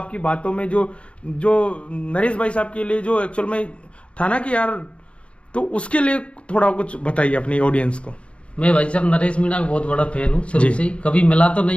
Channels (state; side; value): late; right; 0.060 ms